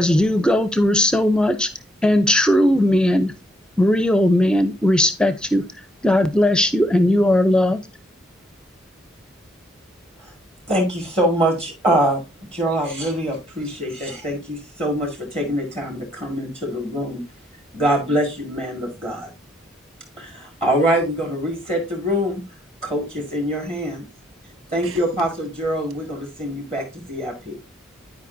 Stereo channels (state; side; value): normal; both; correlation 0.72